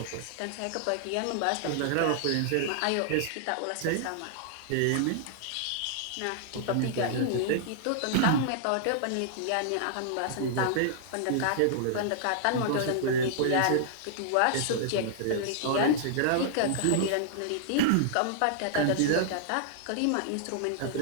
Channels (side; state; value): both; different; correlation -0.01